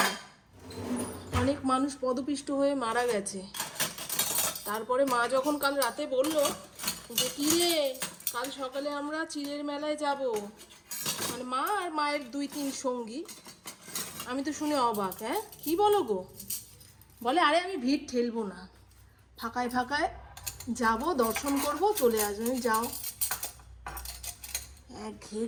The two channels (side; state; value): both; identical; correlation 1.00